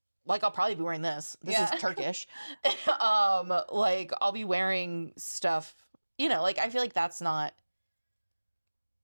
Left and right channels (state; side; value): inverted; both; correlation -1.00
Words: like I'll probably be wearing this. This is Turkish. Like I'll be wearing stuff, like I feel like that's not